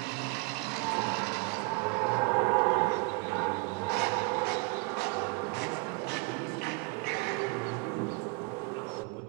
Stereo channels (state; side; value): quieter; left; 28.8 dB